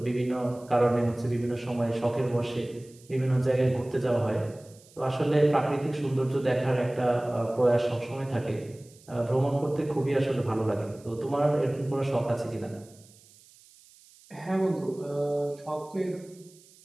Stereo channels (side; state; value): right; noise; hiss, 26 dB below the sound